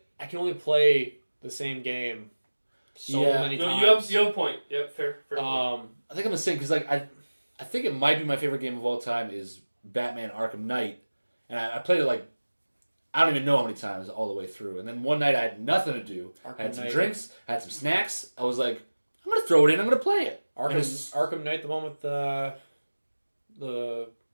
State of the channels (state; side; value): inverted; both; correlation -1.00